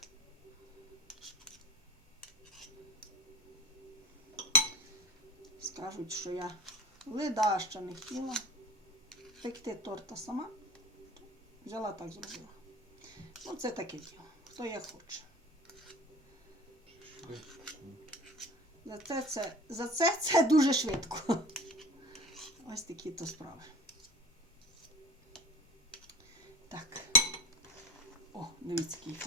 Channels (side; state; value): both; normal; correlation 0.35